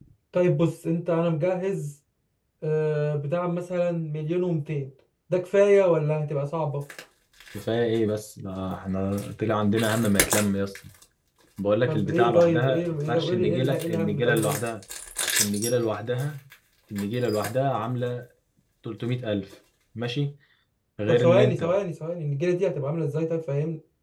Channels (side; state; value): both; identical; correlation 1.00